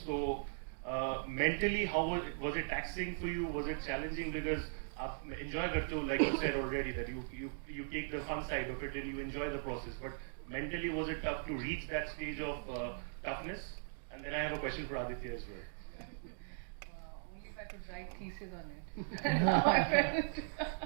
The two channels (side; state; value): left; silent; digital silence